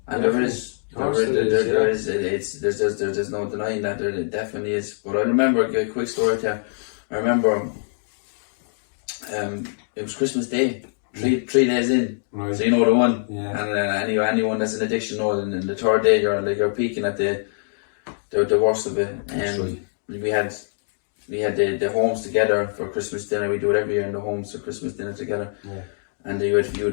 And there's no denying that, there definitely is. But I remember a quick story there. I remember it was Christmas Day. 3 days in, right. So you know the one, and anyone that's an addiction knows. And in the third day, you're peaking at the worst of it. And we had the homes together for Christmas dinner. We do it every year in the homes for Christmas dinner together. Yeah. And you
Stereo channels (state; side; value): silent; right; digital silence